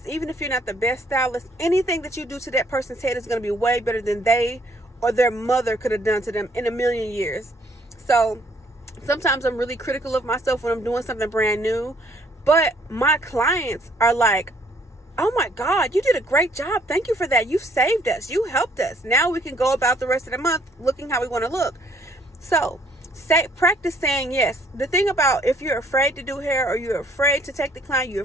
even if you're not the best stylist, anything that you do to that person's head is going to be way better than they or their mother could have done to them in a million years. So sometimes I'm really critical of myself when I'm doing something brand new, but my clients are like, oh my God, you did a great job. Thank you for that. You saved us. You helped us. Now we can go about the rest of the month looking how we want to look. So practice saying yes. The thing about, if you're afraid to do hair, or you're afraid to take the client, you're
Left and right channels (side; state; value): both; normal; correlation 0.64